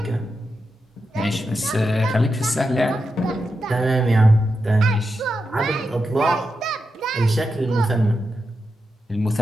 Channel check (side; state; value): both; normal; correlation 0.88